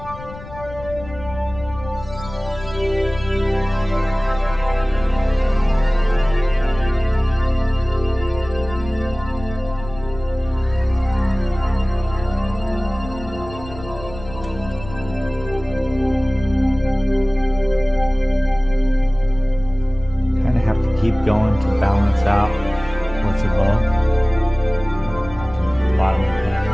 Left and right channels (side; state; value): left; noise; rumble, 15 dB below the sound